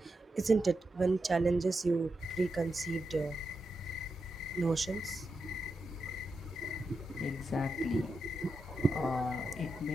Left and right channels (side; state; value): both; normal; correlation 0.87